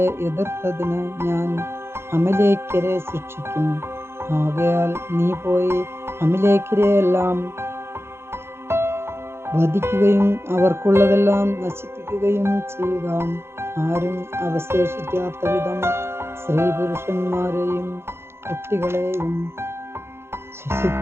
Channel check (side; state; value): left; late; 0.12 ms